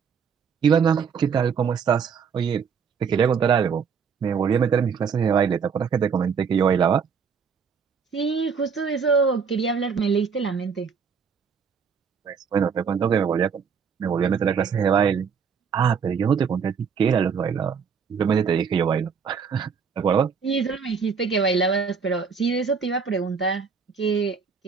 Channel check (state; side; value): quieter; left; 6.2 dB